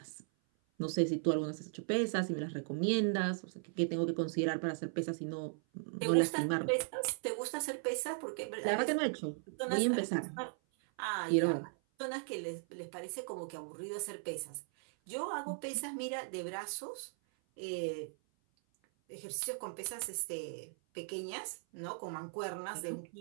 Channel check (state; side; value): silent; left; 53 dB below the other